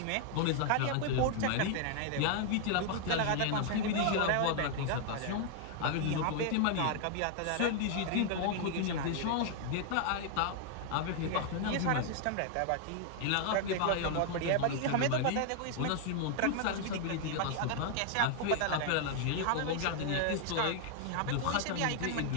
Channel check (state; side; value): different; both; correlation 0.00